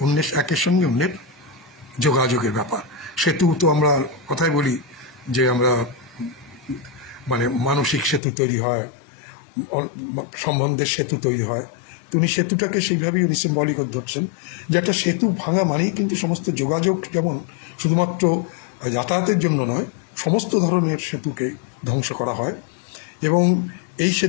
অন্যের একের সঙ্গে অন্যের যোগাযোগের ব্যাপার। সেতু তো আমরা কথাই বলি যে আমরা মানে মানসিক সেতু তৈরি হয়, সম্বন্ধের সেতু তৈরি হয়। তো উনি সেতুটাকে সেইভাবেই উনি সিম্বলিক ধরছেন যে একটা সেতু ভাঙা মানেই কিন্তু সমস্ত যোগাযোগ, যেমন শুধুমাত্র যাতায়াতের জন্য নয়, সমস্ত ধরনের সেতুকে ধ্বংস করা হয়। এবং এই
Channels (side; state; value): right; drops out; at 8.2 s